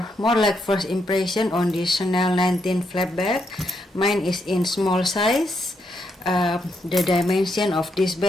more like first impression on this Chanel 19 flap bag. Mine is in small size. The dimension of this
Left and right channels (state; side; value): normal; both; correlation 0.79